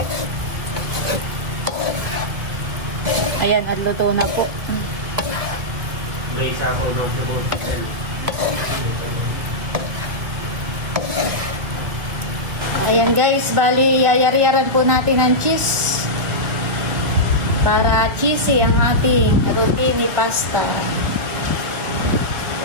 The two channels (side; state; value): left; late; 2.0 ms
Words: Ayan, at luto na po. May isa po ng sibuyas. Ayan guys, bali yayari-yaran po natin ang cheese para cheesy ang ating rotini pasta.